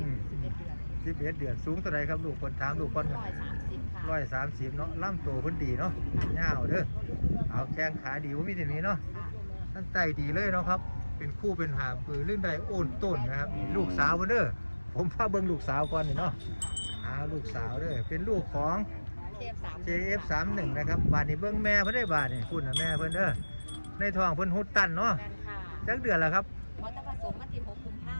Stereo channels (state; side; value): inverted; both; correlation -1.00